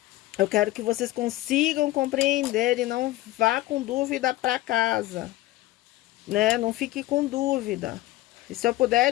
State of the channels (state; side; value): quieter; right; 17.0 dB